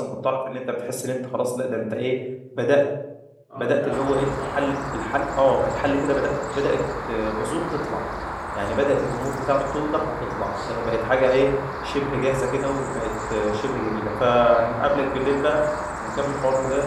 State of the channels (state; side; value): identical; both; correlation 1.00